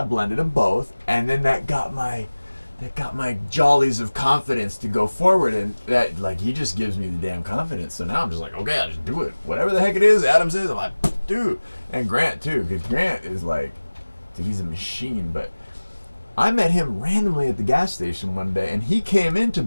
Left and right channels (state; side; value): inverted; both; correlation -1.00